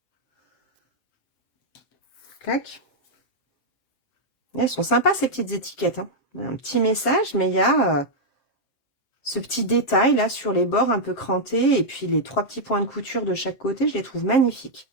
clac, Elles sont sympas ces petites étiquettes, hein. Un petit message, mais il y a ce petit détail là sur les bords un peu crantés. Et puis les 3 petits points de couture de chaque côté, je les trouve magnifiques.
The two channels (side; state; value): right; late; 7.5 ms